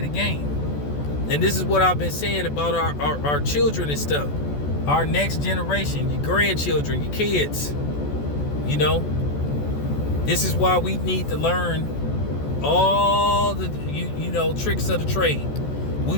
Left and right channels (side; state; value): right; late; 14 ms